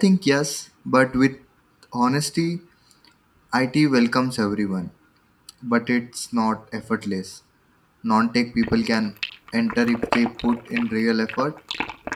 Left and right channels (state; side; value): identical; both; correlation 1.00